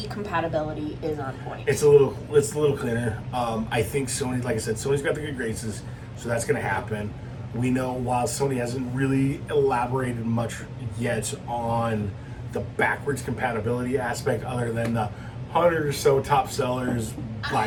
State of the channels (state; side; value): identical; both; correlation 1.00